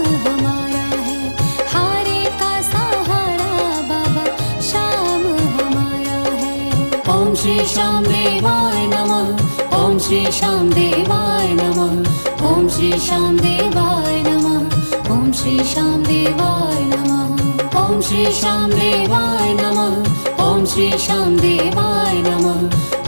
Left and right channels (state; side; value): inverted; both; correlation -1.00